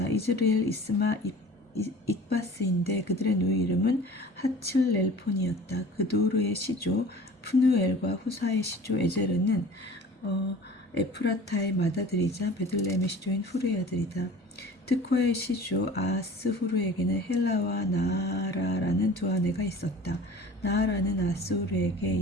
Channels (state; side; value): normal; both; correlation 0.43